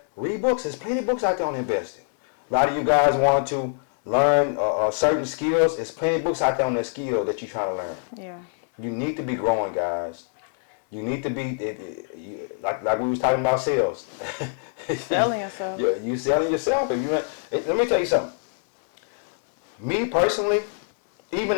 Read books. There's plenty of books out there on investing. A lot of you guys want to learn certain skills. There's plenty of books out there on that skill that you're trying to learn. Yeah. You need to be growing, guys. You need to be like we was talking about sales. Selling yourself. You selling yourself. Let me tell you something. Me personally, even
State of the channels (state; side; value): silent; right; digital silence